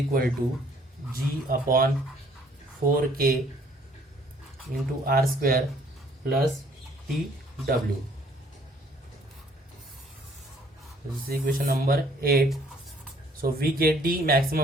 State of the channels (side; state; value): both; normal; correlation 0.61